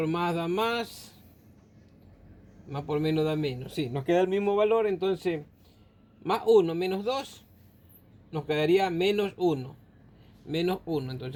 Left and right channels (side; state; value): both; identical; correlation 1.00